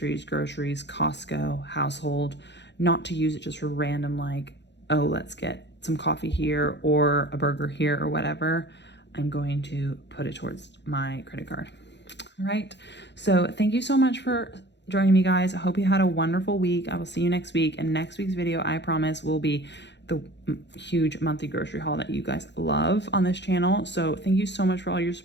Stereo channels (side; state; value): right; late; 0.51 ms